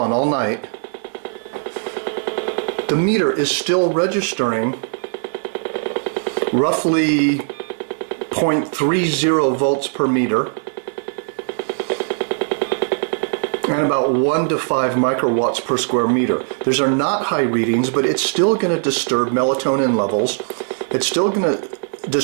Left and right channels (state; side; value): silent; left; digital silence